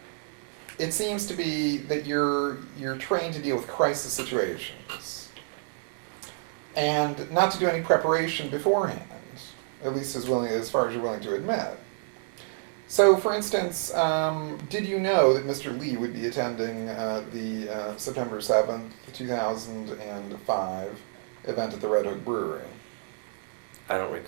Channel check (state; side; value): silent; left; digital silence